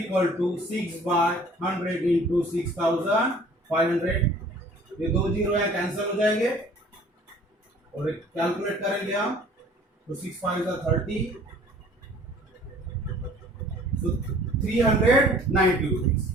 to 6/100 into 6,500. ये दो जीरो यहाँ कैंसिल हो जाएंगे और कैलकुलेट करेंगे हम. तो 6 5 30. So 390 rupees.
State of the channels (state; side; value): normal; both; correlation 0.52